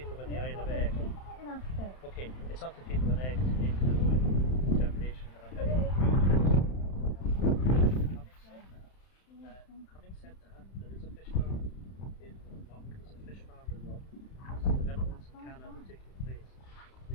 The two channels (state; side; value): late; right; 31 ms